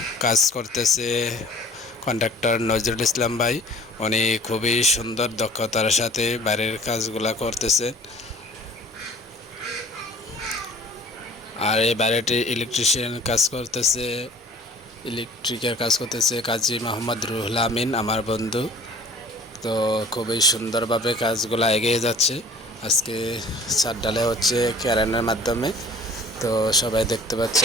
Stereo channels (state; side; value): normal; both; correlation 0.47